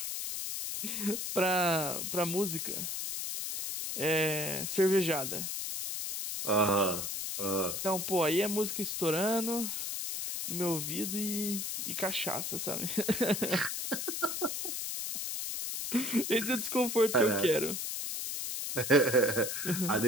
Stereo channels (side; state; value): left; noise; hiss, 3 dB below the sound